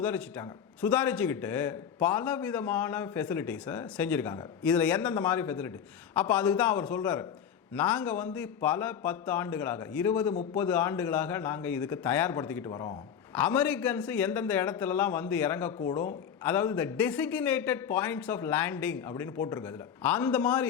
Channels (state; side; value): quieter; right; 8.2 dB